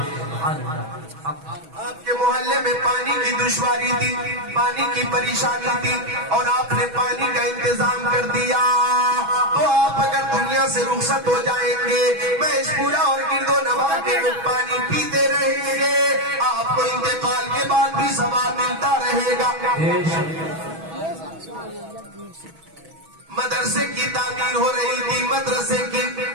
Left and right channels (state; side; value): late; left; 6.2 ms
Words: آپ کے محلے میں پانی کی دشواری تھی, پانی کی پریشانی تھی, اور آپ نے پانی کا انتظام کر دیا, تو آپ اگر دنیا سے رخصت ہو جائیں گے, محض پورا اور گرد و نواح کے لوگ پانی پیتے رہیں گے, آپ کو انتقال کے بعد بھی ثواب ملتا رہے گا. مدرسے کی تعمیر ہو رہی تھی, مدرسے کی,